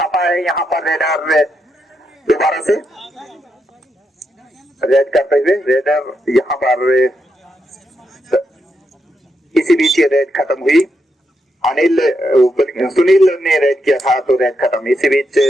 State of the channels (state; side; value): normal; both; correlation 0.82